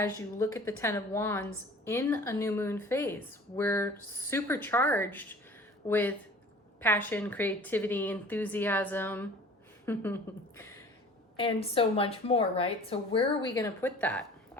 you look at the Ten of Wands in a new moon phase. We're supercharged with passion, creativity, enthusiasm, and so much more, right? So where are we going to put that?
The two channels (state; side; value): normal; both; correlation 0.45